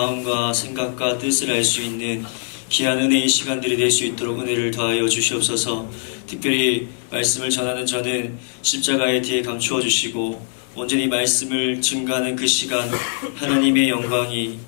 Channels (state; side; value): silent; right; digital silence